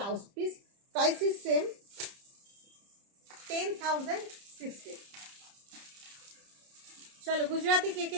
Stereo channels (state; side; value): late; left; 30 ms